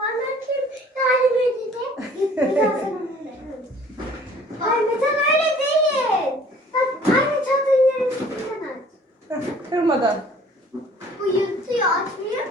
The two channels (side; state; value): both; normal; correlation 0.53